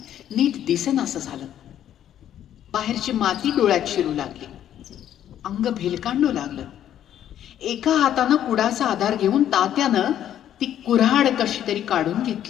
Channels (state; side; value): quieter; right; 10.8 dB